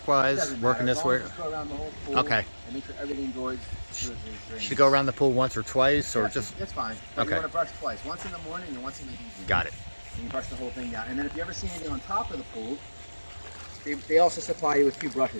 working this way? Just go around the whole pool. Okay. And make sure everything goes towards the drain. Should you go around the pool once or twice, or Yeah, just? That's fine. But Okay. you want to brush twice. Once in the morning and once in the evening. Got it. And you brush the whole thing down. And then if you ever see anything on top of the pool, they also supply you with 2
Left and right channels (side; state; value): both; inverted; correlation -1.00